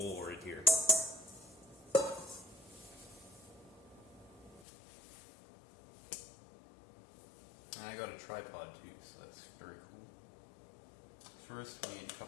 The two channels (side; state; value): right; drops out; at 4.7 s